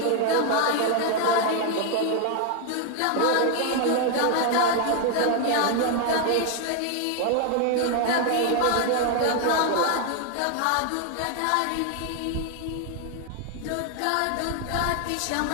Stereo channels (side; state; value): both; different; correlation 0.00